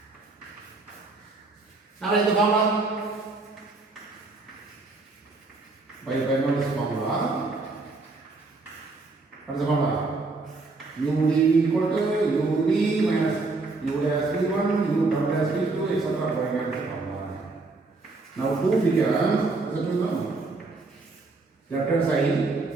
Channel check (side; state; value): left; quieter; 3.6 dB